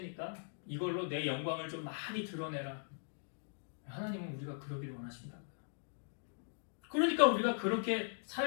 이걸로 내 영광을 좀 많이 드러내라. 하나님은 우리가 그러길 원하신다고요. 그러니까 우리가 그렇게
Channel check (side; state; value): right; silent; digital silence